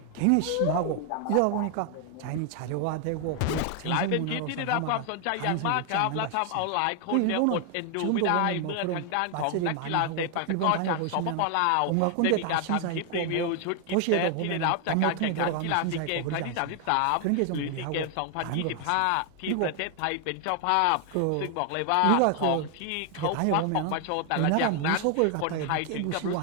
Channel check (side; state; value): both; different; correlation 0.00